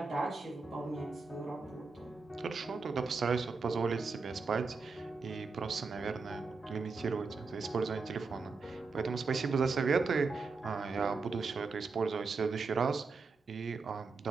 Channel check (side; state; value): left; quieter; 4.4 dB